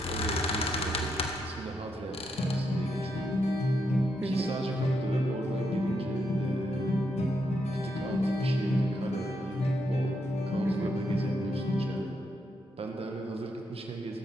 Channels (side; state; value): both; normal; correlation 0.80